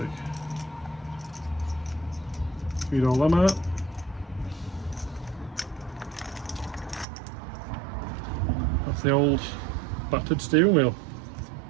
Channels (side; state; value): left; drops out; at 7.1 s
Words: Feed all them out. That's the old battered steering wheel.